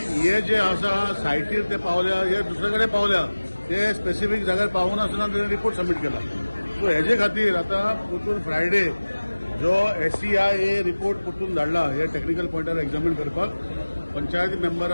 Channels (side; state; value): both; inverted; correlation -1.00